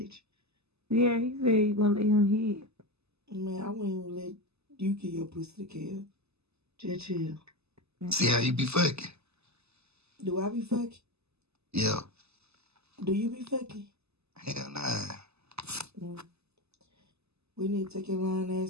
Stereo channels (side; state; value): left; late; 0.79 ms